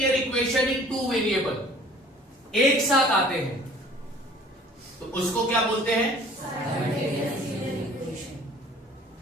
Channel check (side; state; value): both; normal; correlation 0.50